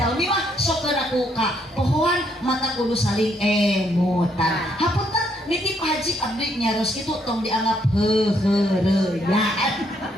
mah sok aku ka pohon mata kudu saling emutan. Hapunten nitip Haji abdi nyaros kitu tong dianggap heureuyaan.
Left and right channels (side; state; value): both; normal; correlation 0.72